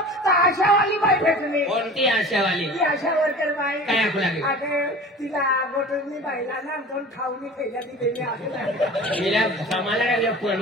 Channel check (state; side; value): normal; both; correlation 0.39